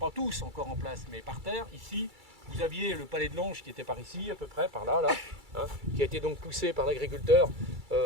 tous encore en place, mais par terre. Ici, vous aviez le palais de l'Ange qui était par ici, à peu près, par là, qui a été donc poussé par l'agriculteur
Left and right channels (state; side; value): late; left; 2.3 ms